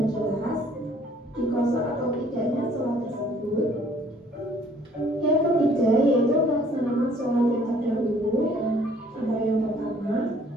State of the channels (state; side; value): normal; both; correlation 0.58